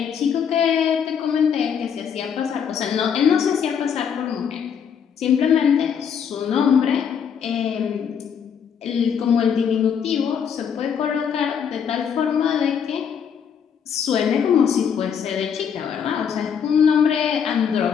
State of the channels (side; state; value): right; quieter; 7.5 dB